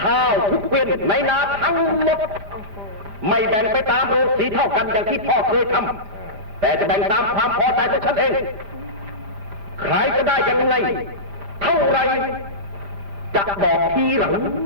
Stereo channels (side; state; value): left; late; 5.0 ms